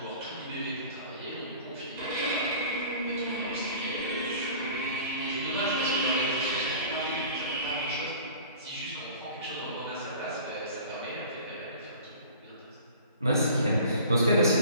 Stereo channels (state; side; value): inverted; both; correlation -0.44